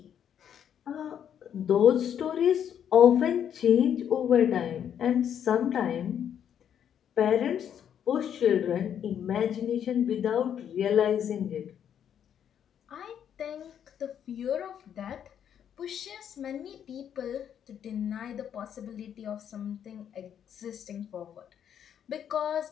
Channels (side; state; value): right; quieter; 9.1 dB